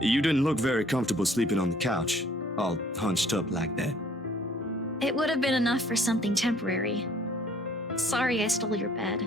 You didn't look very comfortable sleeping on the couch, all hunched up like that. It would have been enough for something temporary. Sorry I stole your bed.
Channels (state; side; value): normal; both; correlation 0.58